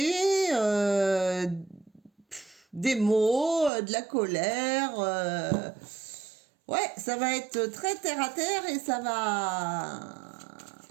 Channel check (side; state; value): left; drops out; at 3.7 s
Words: des mots, de la colère. Ouais, ça va être très terre à terre et ça va...